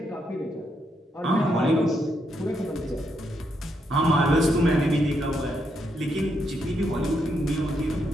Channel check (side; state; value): both; normal; correlation 0.79